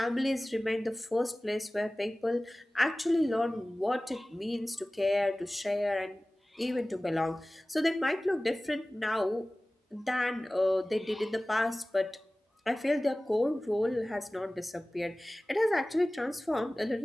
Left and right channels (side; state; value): both; normal; correlation 0.98